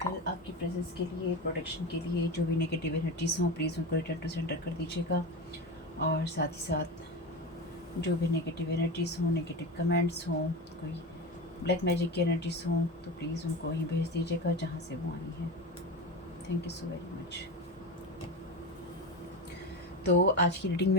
आपकी प्रेजेंस के लिए, प्रोटेक्शन के लिए। जो भी नेगेटिव एनर्जीज हों प्लीज़ उनको रिटर्न टू सेंटर कर दीजिएगा। और साथ ही साथ जो भी नेगेटिव एनर्जीज हों, नेगेटिव कमेंट्स हों, कोई ब्लैक मैजिक की एनर्जीज हों, तो प्लीज़ उनको वहीं भेज दीजिएगा जहाँ से वो आई हैं। Thank you so very much. तो आज की रीडिंग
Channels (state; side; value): normal; both; correlation 0.23